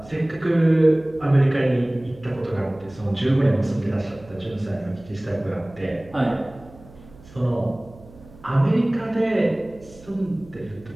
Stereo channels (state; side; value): noise; right; hum, 22 dB below the sound